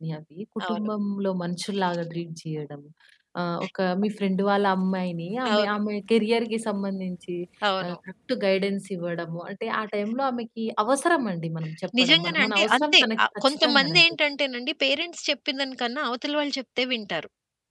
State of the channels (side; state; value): both; identical; correlation 1.00